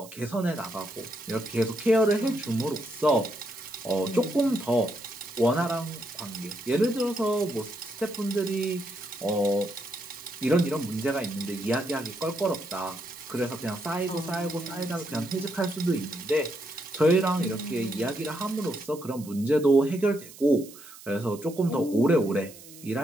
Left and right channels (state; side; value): noise; right; hiss, 18 dB below the sound